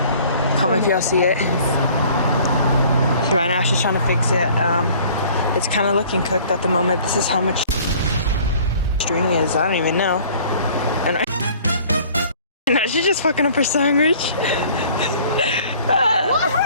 Comment if y'all see it. So right now she's trying to fix it. It's kind of looking cooked at the moment. This is how much string is. I don't even know. And now she's just fucking up her sandwich. What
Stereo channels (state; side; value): inverted; both; correlation -0.52